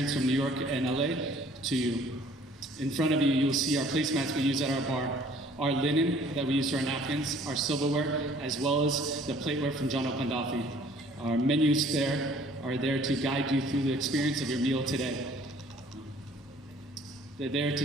from New York and LA to you. In front of you, you'll see our placemats we use at our bar, our linen that we use for our napkins, our silverware, as well as the plateware from John Taube IV. Our menus are there to guide you through the experience of your meal today. They're there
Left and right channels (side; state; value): both; normal; correlation 0.55